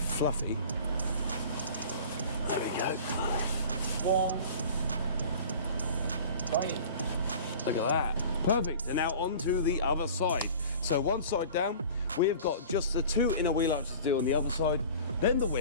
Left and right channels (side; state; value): both; inverted; correlation -0.41